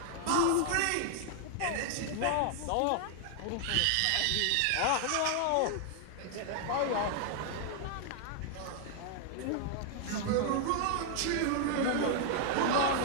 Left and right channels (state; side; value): different; both; correlation 0.00